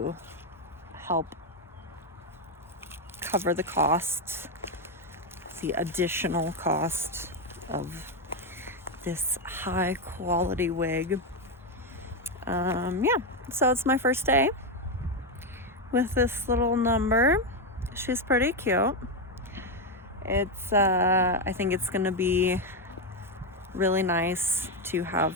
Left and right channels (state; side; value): normal; both; correlation 0.06